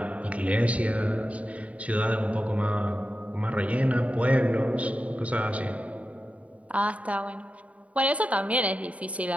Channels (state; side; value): late; left; 0.066 ms